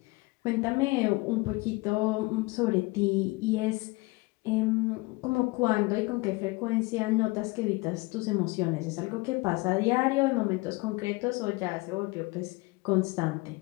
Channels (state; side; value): quieter; right; 24.4 dB